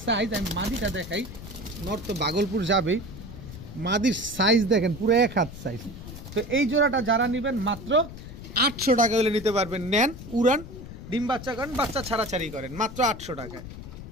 সাইজ, আমি মাদিটা দেখাই, নর তো ভাগলপুর যাবেই, মাদির সাইজ দেখেন পুরো 1 হাত সাইজ। তো এই জোড়াটা যারা নেবেন মাত্র 800 টাকা হলে নিতে পারবেন। নেন, উড়ান, ডিম বাচ্চা করেন, বাচ্চা ছাড়াছাড়ি করেন, মাত্র 800 টাকায়।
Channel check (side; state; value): left; noise; rumble, 12 dB below the sound